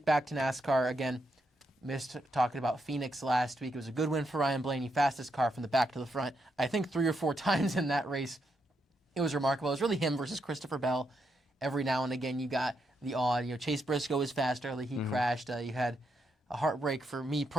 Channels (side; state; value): both; normal; correlation 0.81